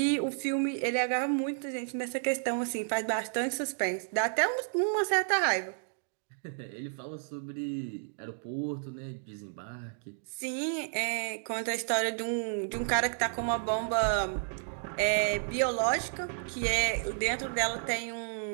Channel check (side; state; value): left; silent; digital silence